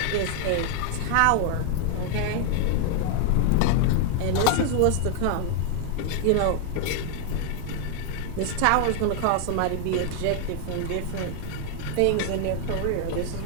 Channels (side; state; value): both; different; correlation 0.00